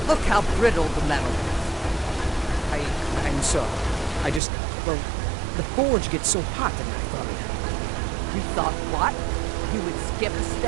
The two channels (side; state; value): left; drops out; at 4.4 s